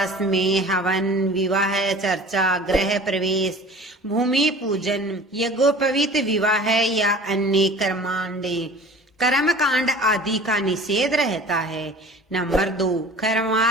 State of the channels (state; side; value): normal; both; correlation 0.43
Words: में हवन, विवाह, चर्चा, गृह प्रवेश, भूमि पूजन, यज्ञोपवीत विवाह या अन्य कर्मकांड आदि का निषेध रहता है। नंबर 2,